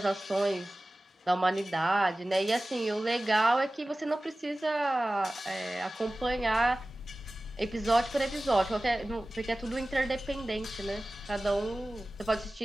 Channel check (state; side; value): normal; both; correlation 0.97